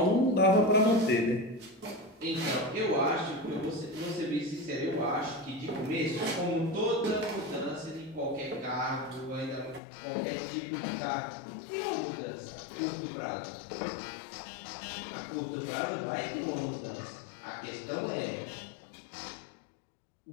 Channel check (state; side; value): drops out; right; at 9.8 s